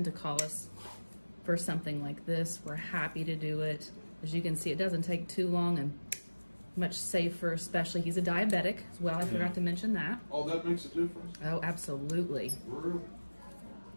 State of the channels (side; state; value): both; inverted; correlation -1.00